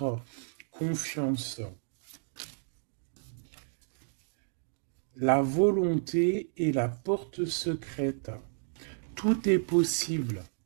confiance. La volonté est la porte secrète. Tout est possible.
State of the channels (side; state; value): left; silent; digital silence